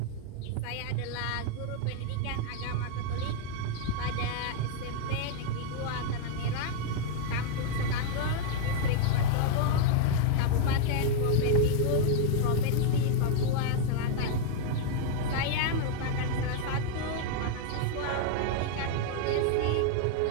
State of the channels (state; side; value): different; both; correlation 0.00